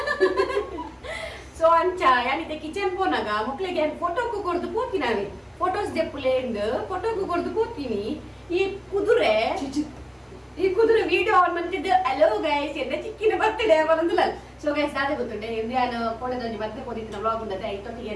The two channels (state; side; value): identical; both; correlation 1.00